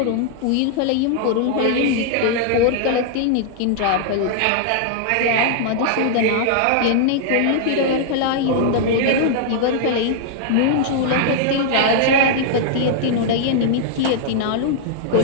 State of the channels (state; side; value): different; both; correlation -0.01